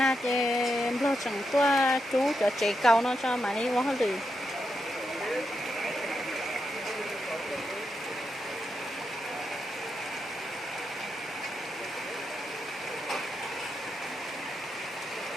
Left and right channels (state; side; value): normal; both; correlation 0.85